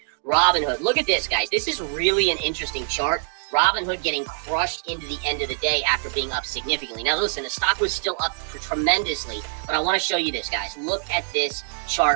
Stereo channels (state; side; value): silent; left; 63 dB below the other